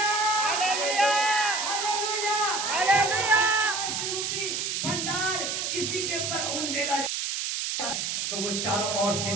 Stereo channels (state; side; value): noise; right; hiss, 1 dB below the sound